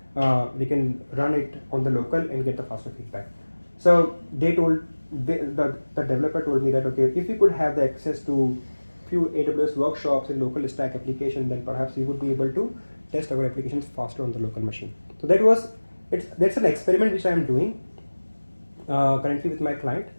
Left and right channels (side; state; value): both; inverted; correlation -1.00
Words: run it on the local and get the faster feedback. So the developer told me that okay, if you could have the access to few AWS workshops in local stack application, then perhaps we would be able to test our applications faster on the local machine. So that's an experiment which I am doing currently with my client,